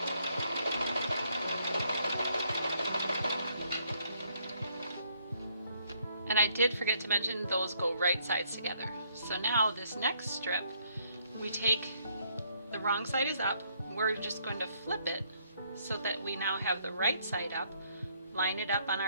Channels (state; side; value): inverted; both; correlation -0.69